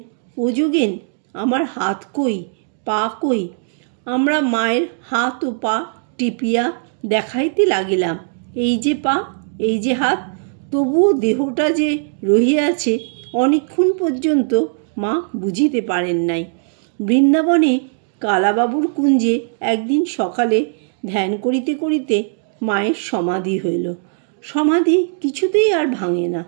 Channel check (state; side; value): silent; left; digital silence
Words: ও যোগেন, আমার হাত কই, পা কই? আমরা মায়ের হাত ও পা টিপিয়া দেখাইতে লাগিলাম, এই যে পা, এই যে হাত। তবুও দেহটা যে রহিয়াছে অনেকক্ষণ পর্যন্ত মা বুঝিতে পারেন নাই। বৃন্দাবনে কালাবাবুর কুঞ্জে একদিন সকালে ধ্যান করিতে করিতে মায়ের সমাধি হইল। সমাধি কিছুতেই আর ভাঙে না।